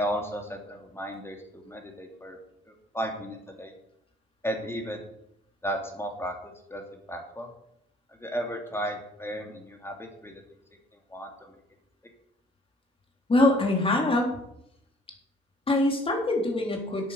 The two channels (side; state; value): both; normal; correlation 0.58